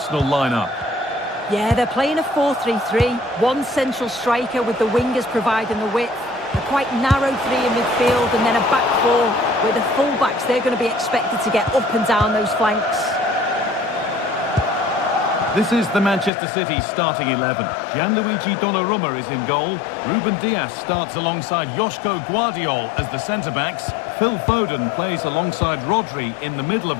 line up. Yeah, they're playing a 4-3-3. One central striker with the wingers providing the width. A quite narrow three in midfield and then a back four where the full-backs, they're going to be expected to get up and down those flanks. This is the Manchester City starting 11. Gianluigi Donnarumma is in goal. Ruben Dias starts alongside Joško Guardiol as the centre-backs. Phil Foden plays alongside Rodri in the middle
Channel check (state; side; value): drops out; right; at 16.3 s